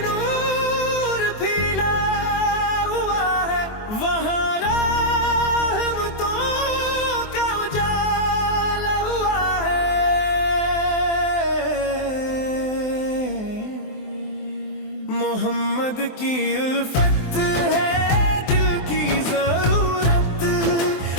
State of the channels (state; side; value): late; right; 23 ms